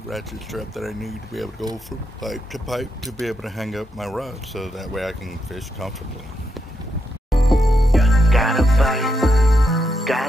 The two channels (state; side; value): normal; both; correlation 0.82